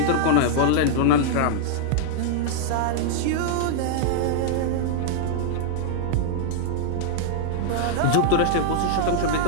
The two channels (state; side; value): different; both; correlation -0.01